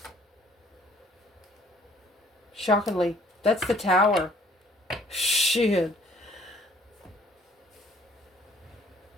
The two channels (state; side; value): normal; both; correlation 0.58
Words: Shockingly, that's the Tower. Shit.